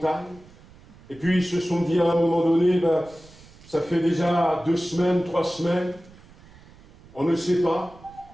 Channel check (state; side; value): noise; right; rumble, 24 dB below the sound